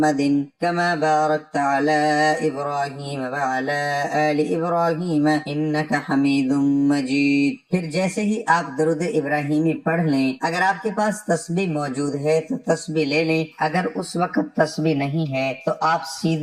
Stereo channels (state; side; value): identical; both; correlation 1.00